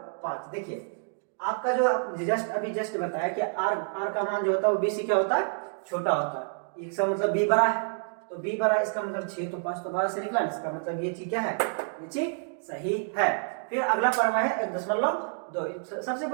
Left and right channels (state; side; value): silent; left; digital silence